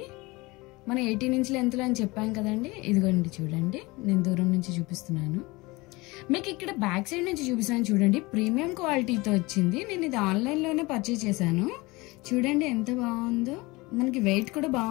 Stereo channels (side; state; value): right; quieter; 23.1 dB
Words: మనం 18 ఇంచ్ లెంత్ లో అని చెప్పాం కదండి. ఇదిగోండి చూడండి, నేను దూరం నుంచి చూపిస్తున్నాను మీకు. ఇక్కడ బ్యాక్ సైడ్ నుంచి చూపిస్తాను చూడండి, ప్రీమియం క్వాలిటీతో వచ్చింది. నేను ఇది ఆన్లైన్ లోనే పర్చేజ్ చేశాను. చూడండి ఎంత బాగుందో, మనకి వెయిట్ కూడా